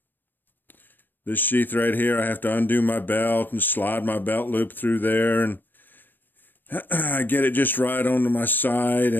This sheath right here, I have to undo my belt and slide my belt loop through there, and I get it just right onto my side.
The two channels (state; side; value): late; right; 0.091 ms